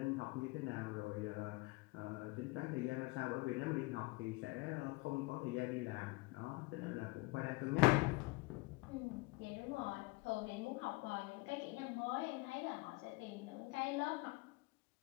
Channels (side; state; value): right; quieter; 24.8 dB